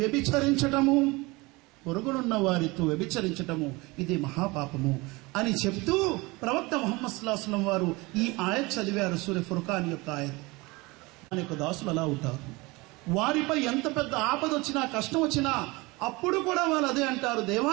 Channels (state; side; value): quieter; left; 23.8 dB